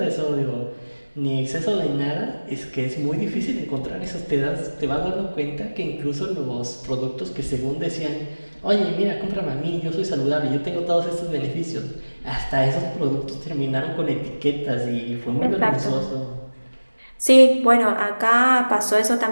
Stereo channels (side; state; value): both; inverted; correlation -1.00